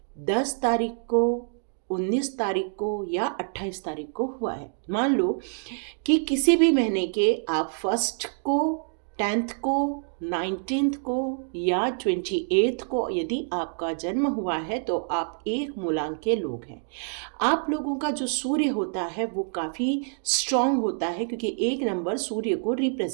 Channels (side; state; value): left; silent; 60 dB below the other